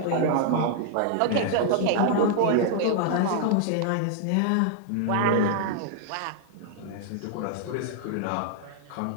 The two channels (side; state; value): both; different; correlation -0.01